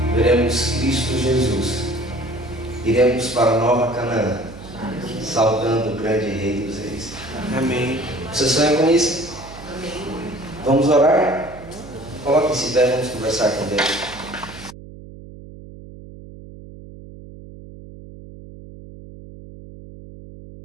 veremos Cristo Jesus. Iremos para a Nova Canaã, saudando o grande Rei dos Reis. Amém. Você sonha com isso? Vamos orar? Coloque-se em pé, vamos conversar com Deus.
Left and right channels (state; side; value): noise; right; hum, 16 dB below the sound